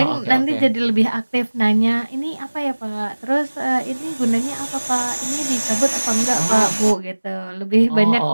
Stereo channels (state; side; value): inverted; both; correlation -1.00